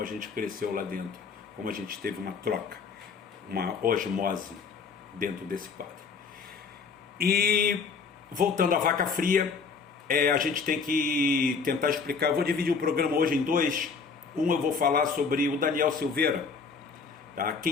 a gente cresceu lá dentro, como a gente teve uma troca, uma osmose dentro desse quadro. E voltando à vaca fria, a gente tem que tentar explicar. Eu vou dividir o programa hoje em dois. Eu vou falar sobre o Daniel Silveira, tá?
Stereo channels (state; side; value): quieter; right; 5.3 dB